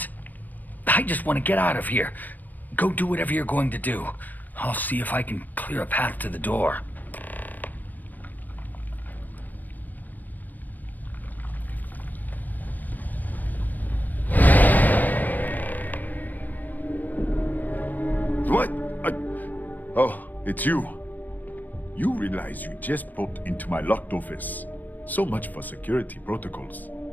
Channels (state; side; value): late; right; 0.086 ms